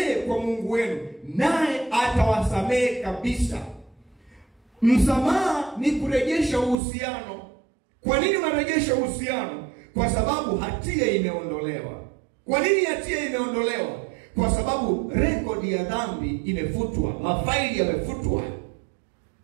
kwa Mungu wenu naye atawasamehe kabisa. Msamaha ni kurejesha uhusiano. Kwa nini unarejesha uhusiano? Kwa sababu hatia imeondolewa. Kwa nini hatia imeondolewa? Kwa sababu rekodi ya dhambi imefutwa. Mafaili yamefutwa.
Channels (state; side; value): drops out; left; at 6.8 s